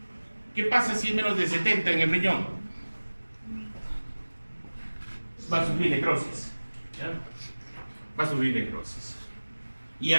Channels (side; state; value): both; inverted; correlation -1.00